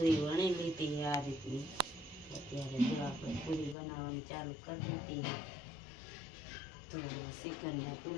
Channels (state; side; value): drops out; right; at 3.8 s